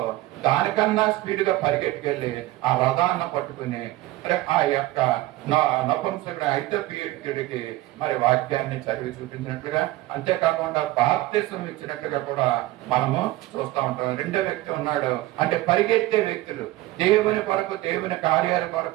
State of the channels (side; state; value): left; quieter; 17.3 dB